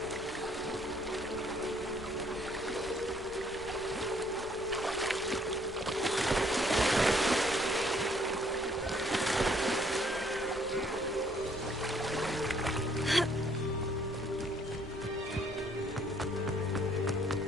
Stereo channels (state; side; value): normal; both; correlation 0.64